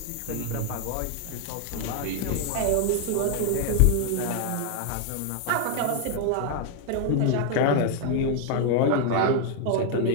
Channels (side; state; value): both; different; correlation 0.00